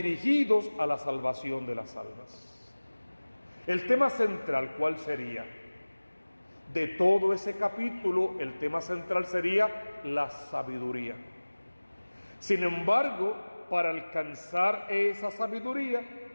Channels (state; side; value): inverted; both; correlation -1.00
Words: a la salvación de las almas. El tema central, ¿cuál sería? De todo ese capítulo, el tema central sería la sabiduría. Sin embargo, para alcanzar esa sabiduría,